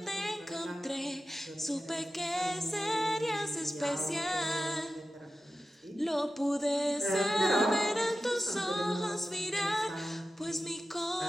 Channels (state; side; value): normal; both; correlation 0.93